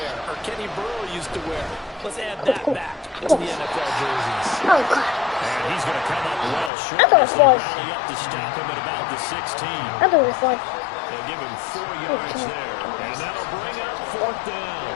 or Kenny Burrow used to wear? Let's add that back to the NFL jerseys. Oh, God. And he's going to come up well short. I thought it was fun. Rally up to stop him at about the 16. I thought it was fun. They'll give him 4 yards there. And that'll bring up 4th down.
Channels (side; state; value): right; drops out; at 6.7 s